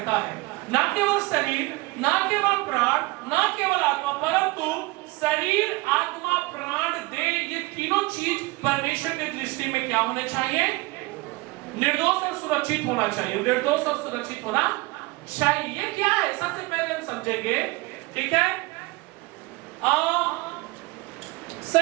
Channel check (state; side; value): quieter; left; 22.9 dB